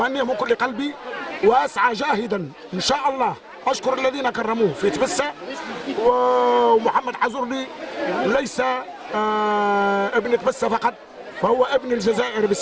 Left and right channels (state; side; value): identical; both; correlation 1.00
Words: من كل قلبي، واسعى جاهدا ان شاء الله. اشكر الذين كرموه في تبسه. ومحمد حزورلي ليس ابن تبسه فقط، فهو ابن الجزائر